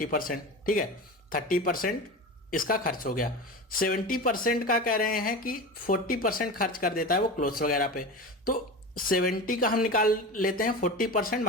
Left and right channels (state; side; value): normal; both; correlation 0.28